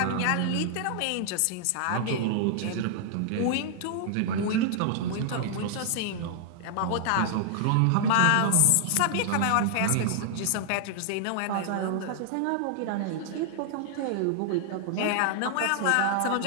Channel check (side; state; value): both; different; correlation -0.01